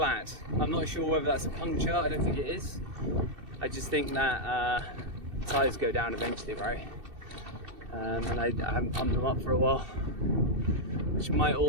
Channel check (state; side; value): late; left; 2.7 ms